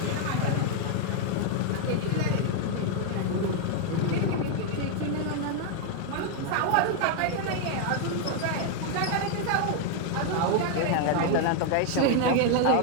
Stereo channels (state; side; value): different; both; correlation 0.00